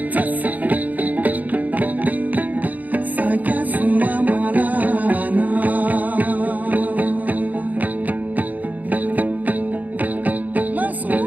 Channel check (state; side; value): late; left; 0.080 ms